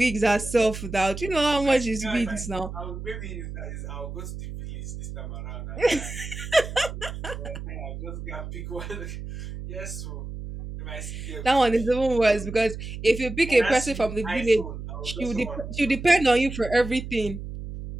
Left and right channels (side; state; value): right; noise; hum, 9 dB below the sound